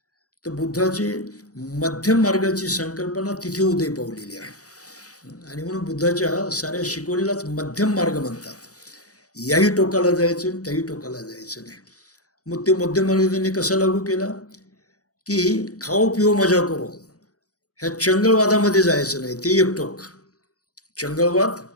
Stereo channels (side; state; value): right; late; 0.67 ms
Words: तर बुद्धाची मध्यम मार्गाची संकल्पना तिथे उदय पावलेली आहे. आणि म्हणून बुद्धाच्या साऱ्या शिकवणीलाच मध्यम मार्ग म्हणतात. याही टोकाला जायचं, त्याही टोकाला जायचं नाही. मग ते मध्यम मार्ग त्यांनी कसा लागू केला की खाओ पिओ मजा करो, ह्या चंगळवादामध्ये जायचं नाही, ते एक टोक. चंगळवाद